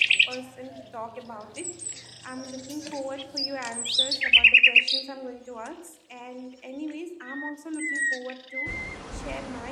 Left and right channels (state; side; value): identical; both; correlation 1.00